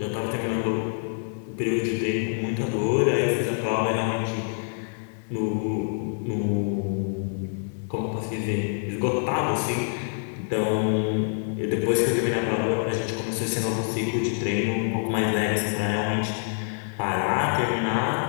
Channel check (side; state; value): right; silent; 61 dB below the other